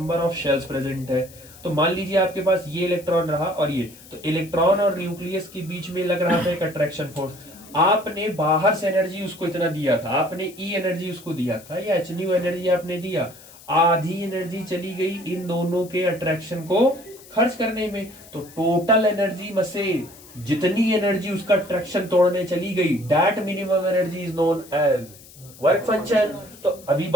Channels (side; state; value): left; noise; hiss, 21 dB below the sound